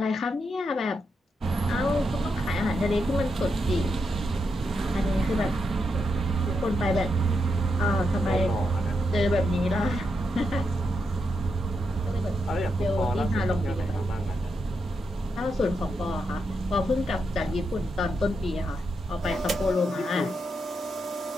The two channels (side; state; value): both; normal; correlation 0.83